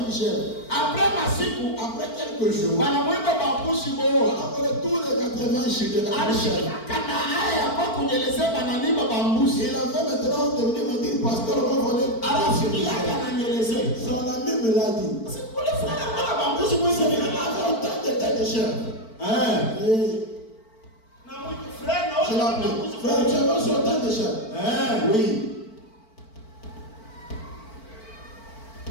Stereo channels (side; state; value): right; late; 4.5 ms